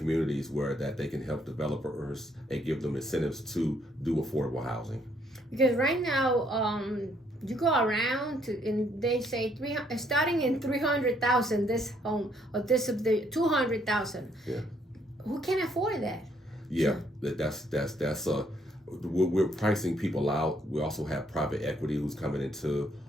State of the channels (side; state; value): both; normal; correlation 0.69